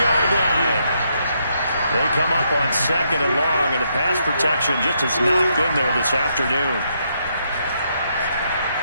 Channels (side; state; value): both; inverted; correlation -0.76